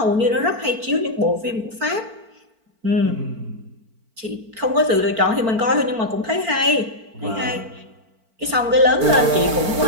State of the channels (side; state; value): left; late; 4.4 ms